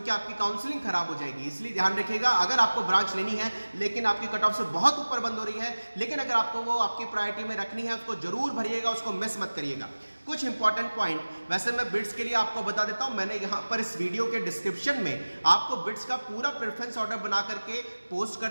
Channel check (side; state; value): both; inverted; correlation -1.00